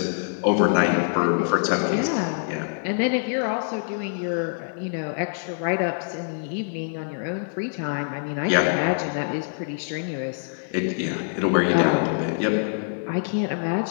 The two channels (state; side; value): silent; right; digital silence